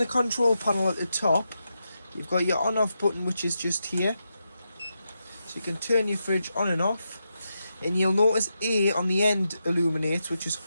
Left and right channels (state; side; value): inverted; both; correlation -0.86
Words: control panel at the top, you've got your on off button, which is just here. So you can turn your fridge on and off. And you'll notice A on the end illuminates, which is